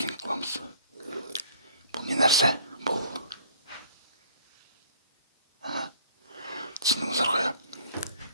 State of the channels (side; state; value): both; inverted; correlation -0.55